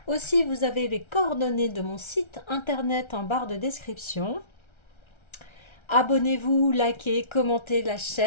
Aussi, vous avez les coordonnées de mon site internet en barre de description. Abonnez-vous, likez, commentez la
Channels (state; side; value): late; right; 1.3 ms